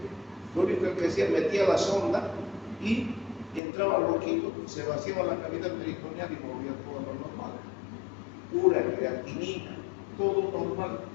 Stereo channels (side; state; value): right; drops out; at 3.6 s